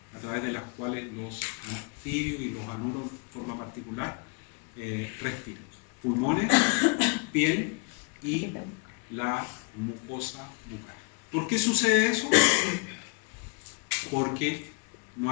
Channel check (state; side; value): quieter; right; 34.0 dB